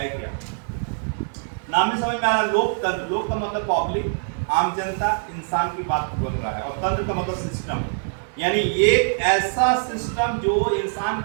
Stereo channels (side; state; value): left; silent; digital silence